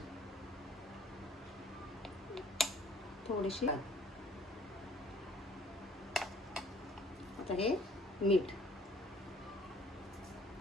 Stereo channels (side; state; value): both; normal; correlation 0.57